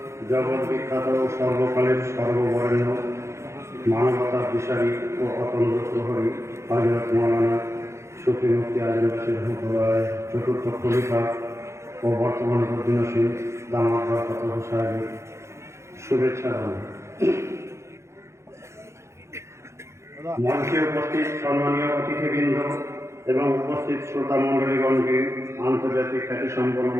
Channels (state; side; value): late; left; 0.13 ms